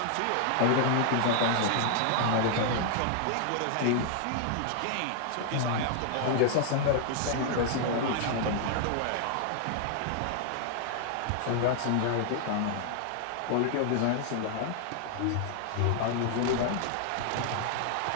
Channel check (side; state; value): both; different; correlation 0.00